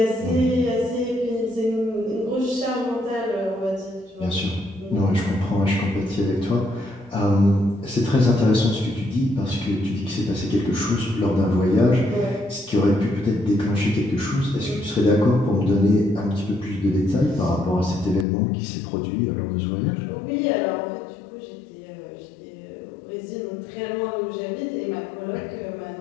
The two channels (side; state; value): right; drops out; at 18.2 s